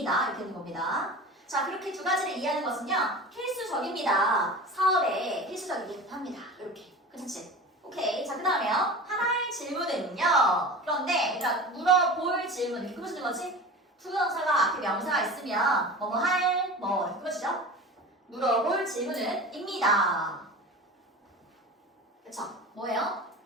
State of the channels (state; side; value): normal; both; correlation 0.34